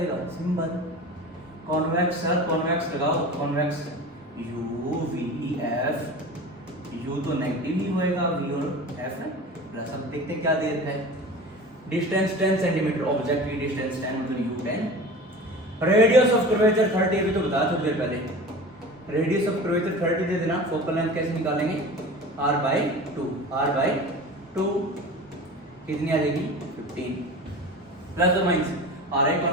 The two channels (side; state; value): both; normal; correlation 0.36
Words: सिंपल। कॉन्वेक्स सर, कॉन्वेक्स लगाओ, convex u v f। u तो नेगेटिव ही होएगा, v और f है प्लस। अब देखते हैं क्या दे रखा है। डिस्टेंस 10 सेंटीमीटर, ऑब्जेक्ट की डिस्टेंस 10 मतलब u 10। रेडियस ऑफ कर्वेचर 30, अभी तो बताया थोड़ी देर पहले। रेडियस ऑफ कर्वेचर 30 दे देना। फोकल लेंथ कैसे निकालेंगे, r/2 कितनी आ जाएगी 15 प्लस और माइनस। आर आई